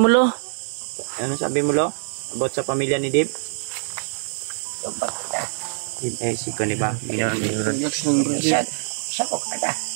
Lo? Ano sabi mo, Lo? About sa pamilya ni Dave? Yung pagkita. Eh, si Kani ba? Isa ko kada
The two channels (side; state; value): left; silent; digital silence